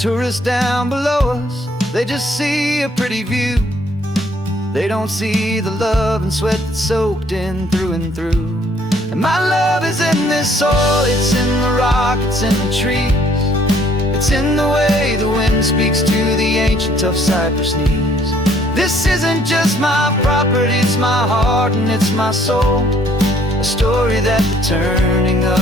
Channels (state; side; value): normal; both; correlation 0.62